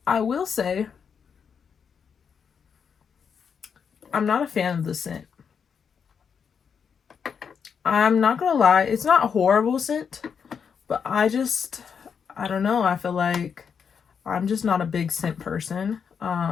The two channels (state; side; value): quieter; right; 6.7 dB